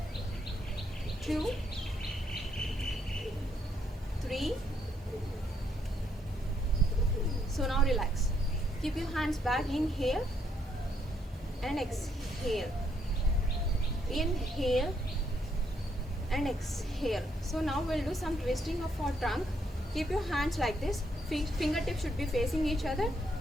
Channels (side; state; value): both; normal; correlation 0.74